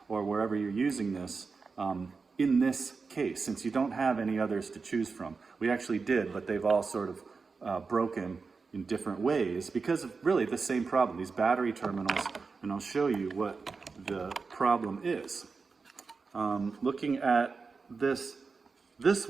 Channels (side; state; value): left; quieter; 4.6 dB